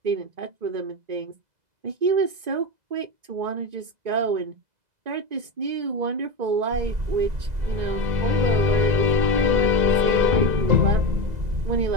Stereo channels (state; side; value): late; left; 2.0 ms